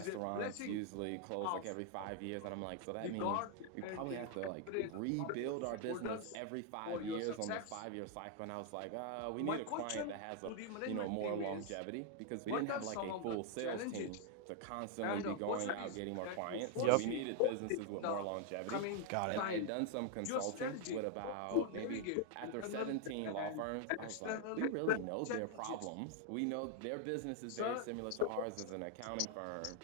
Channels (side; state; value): both; different; correlation 0.00